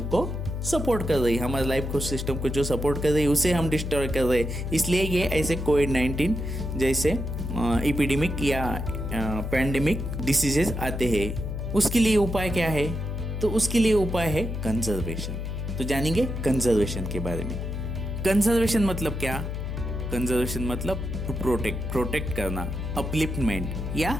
को सपोर्ट कर रही है। हमारे लाइफ को सिस्टम को जो सपोर्ट कर रही है उसे हम डिस्ट्रॉय कर रहे हैं। इसलिए ये ऐसे कोविड-19 जैसे एपिडेमिक या पैंडेमिक डिसीजेस आते हैं। उसके लिए उपाय क्या है? तो उसके लिए उपाय है कंजर्वेशन। तो जानेंगे कंजर्वेशन के बारे में। कंजर्वेशन मतलब क्या? कंजर्वेशन मतलब टू प्रोटेक्ट करना, अपलिफ्टमेंट या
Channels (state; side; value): noise; left; hum, 4 dB below the sound